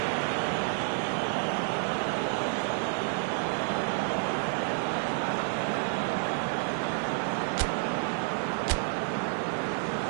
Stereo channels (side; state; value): left; silent; 57 dB below the other